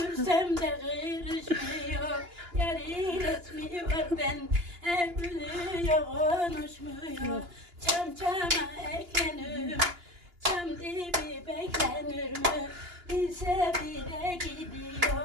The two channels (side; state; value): left; late; 2.9 ms